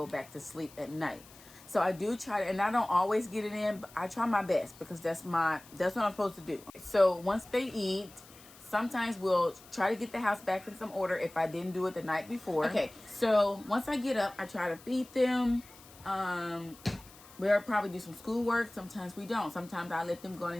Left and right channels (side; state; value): left; noise; hiss, 22 dB below the sound